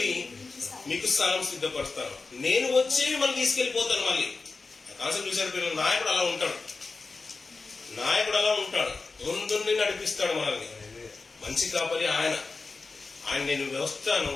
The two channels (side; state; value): right; quieter; 4.1 dB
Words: మీకు స్థలం సిద్ధపరుస్తాను, నేను వచ్చి మనం తీసుకెళ్లిపోతాను. మళ్ళీ కాన్సెప్ట్ చూసారు పిల్లలు, నాయకుడు అలా ఉంటాడు, నాయకుడు అలా ఉంటాడు, ముందుండి నడిపిస్తాడు మనల్ని. మంచి కాపరి ఆయన. నేను వస్తాను,